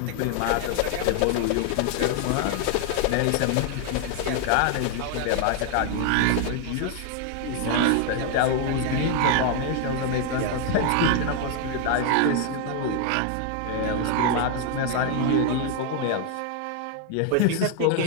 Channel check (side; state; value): both; different; correlation 0.00